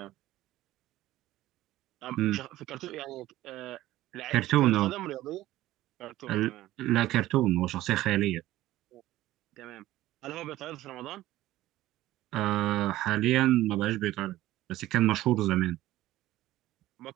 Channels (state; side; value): quieter; left; 15.6 dB